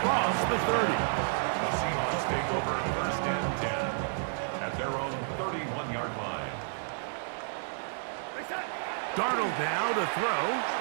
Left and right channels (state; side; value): silent; left; digital silence